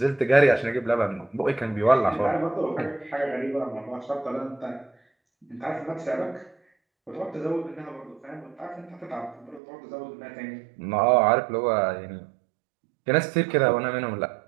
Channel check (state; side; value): drops out; left; at 9.6 s